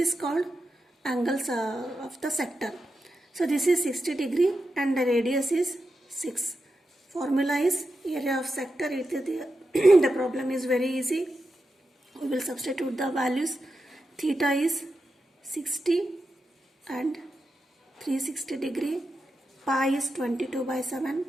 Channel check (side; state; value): both; normal; correlation 0.88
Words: called angles of the sector. So this is 60 degree and the radius is 6. Formula is area of sector. The problem is very easy. We will substitute the values. Theta is 60 and 360 degree. Pi is 22 by 7